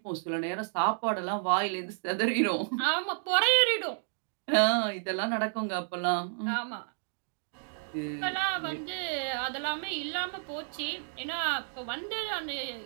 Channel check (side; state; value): left; silent; digital silence